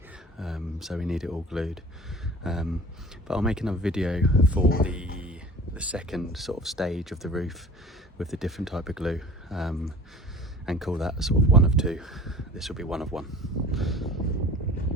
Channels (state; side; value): normal; both; correlation 0.43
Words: so we need it all glued. But I'll make another video for the second sort of stage of the roof with the different type of glue, and call that sort of one of two. This will be one of one.